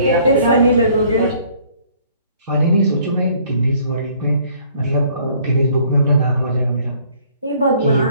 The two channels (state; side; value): inverted; both; correlation -0.59